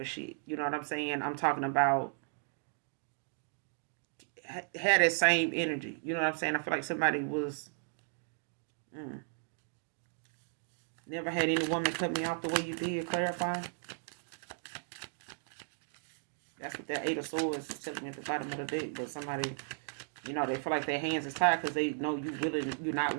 of shit. You know what I'm saying? I'm talking about had that same energy. You know what I'm saying? I feel like somebody was never had any woman cut me off the way you did. Clarify. That's what that Eight of Swords is telling me at the bottom of the deck. But somebody, they feel like their hands is tied because they know you're not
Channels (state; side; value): silent; left; digital silence